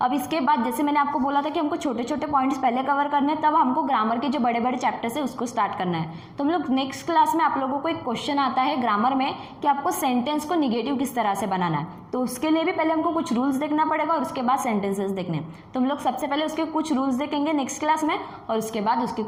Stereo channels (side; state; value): both; identical; correlation 1.00